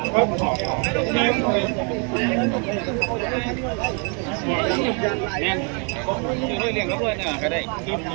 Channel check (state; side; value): quieter; left; 36.6 dB